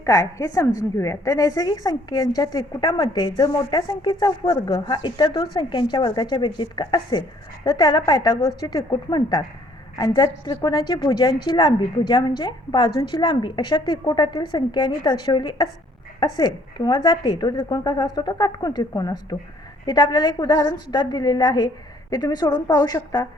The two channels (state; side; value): normal; both; correlation 0.61